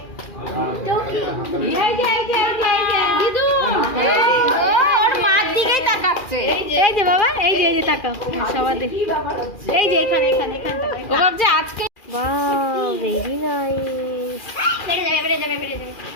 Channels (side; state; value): right; late; 2.4 ms